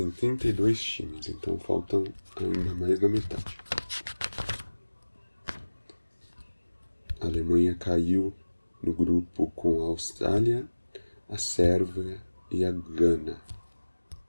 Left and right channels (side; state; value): both; inverted; correlation -1.00